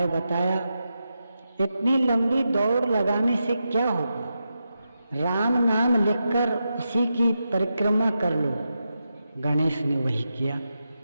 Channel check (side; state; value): both; inverted; correlation -0.88